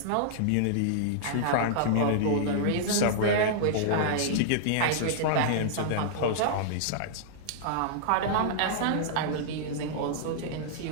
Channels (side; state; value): both; different; correlation -0.02